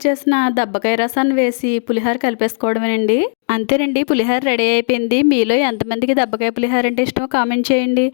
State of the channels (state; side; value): silent; right; digital silence